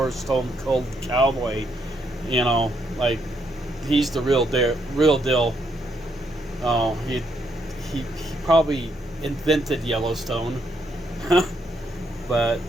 stone cold cowboy, you know, like he's the real deal. Oh, he probably invented Yellowstone. But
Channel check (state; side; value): normal; both; correlation 0.75